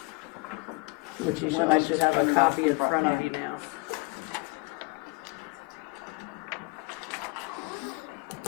Which you should have a copy in front of you now.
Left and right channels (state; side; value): quieter; right; 26.1 dB